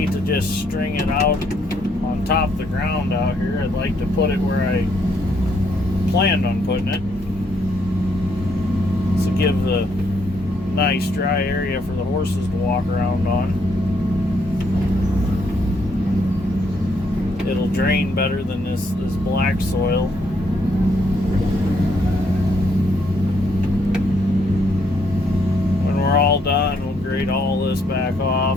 to just string it out on top of the ground out here. I'd like to put it where I planned on putting it, to give the nice dry area for the horses to walk around on. It'll drain better than this black soil. When we're all done, we'll grade all this back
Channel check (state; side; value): normal; both; correlation 0.72